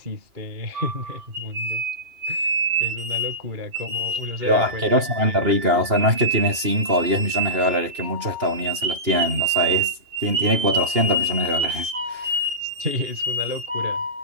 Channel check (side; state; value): left; late; 2.8 ms